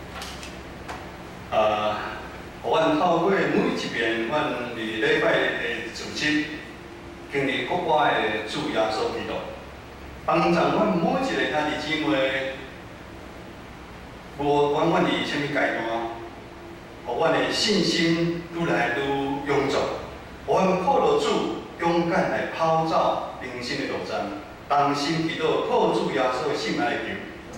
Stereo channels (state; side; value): identical; both; correlation 1.00